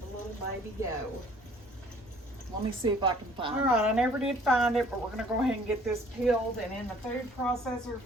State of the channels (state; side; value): normal; both; correlation 0.56